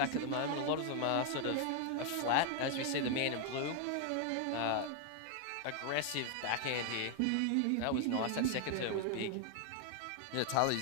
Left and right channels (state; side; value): different; both; correlation 0.00